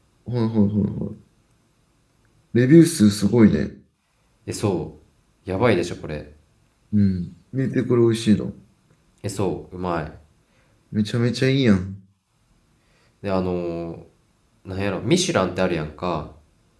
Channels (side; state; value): both; identical; correlation 1.00